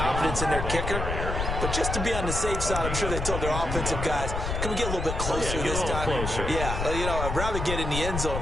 in their kicker. But just to be on the safe side, I'm sure they told their offensive guys, can we get a little bit closer this time? Closer. Yeah, you know, I'd rather get in the end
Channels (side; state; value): left; noise; rumble, 3 dB below the sound